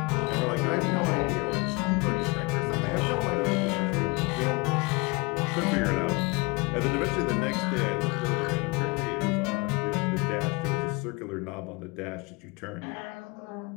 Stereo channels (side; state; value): right; quieter; 26.5 dB